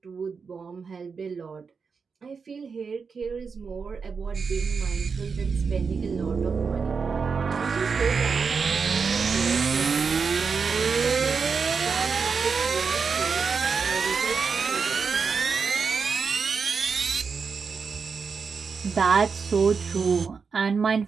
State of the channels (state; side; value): quieter; left; 5.4 dB